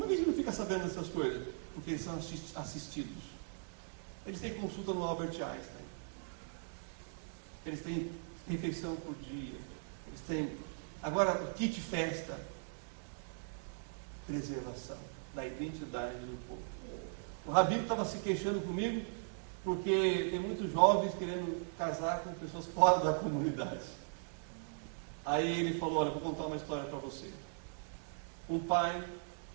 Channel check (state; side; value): silent; left; digital silence